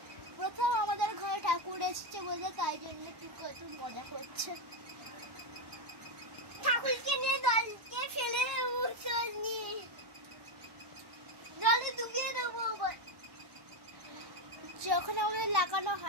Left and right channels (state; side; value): late; left; 1.1 ms